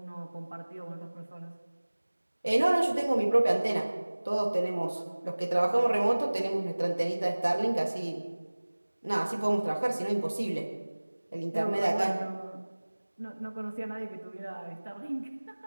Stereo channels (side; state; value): both; inverted; correlation -1.00